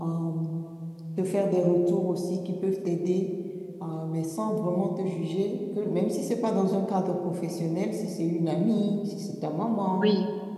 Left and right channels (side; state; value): both; identical; correlation 1.00